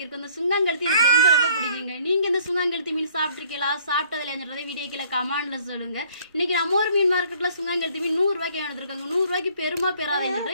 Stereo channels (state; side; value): inverted; both; correlation -0.59